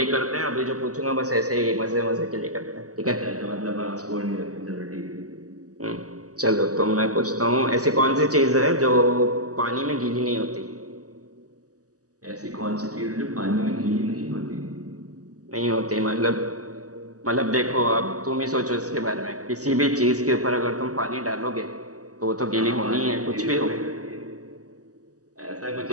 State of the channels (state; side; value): late; left; 0.67 ms